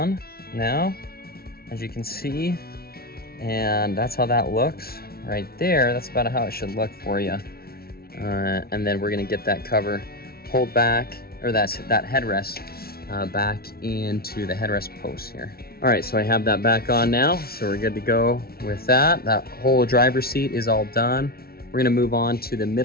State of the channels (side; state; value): right; late; 0.44 ms